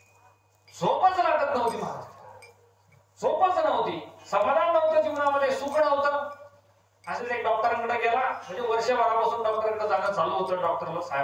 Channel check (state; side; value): identical; both; correlation 1.00